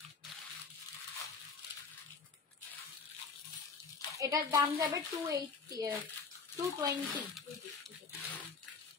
এটার দাম যাবে 220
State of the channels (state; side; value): quieter; right; 4.9 dB